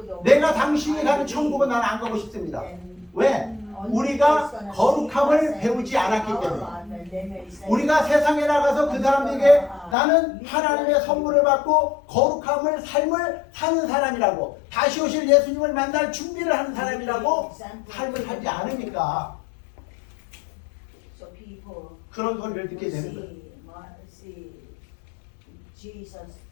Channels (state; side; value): drops out; right; at 10.0 s